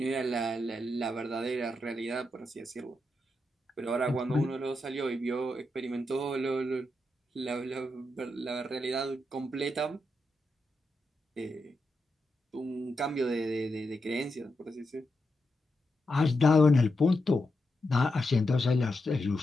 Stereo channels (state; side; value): normal; both; correlation 0.85